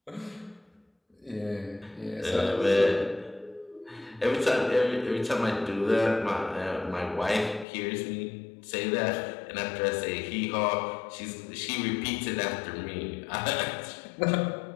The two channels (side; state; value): right; drops out; at 7.7 s